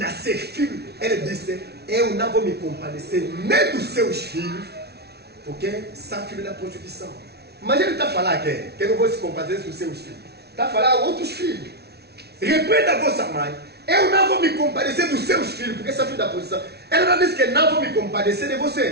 filho, ele disse, eu não vou me compadecer nem dos seus filhos, porque são filhos da prostituição. Mas ele está falando que eu não vou se compadecer dos seus filhos. Está falando outros filhos. Repreenda a vossa mãe. Eu não vou me compadecer dos seus filhos, porque são filhos da prostituição. Ela não disse que não vou me compadecer de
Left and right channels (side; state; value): left; late; 0.48 ms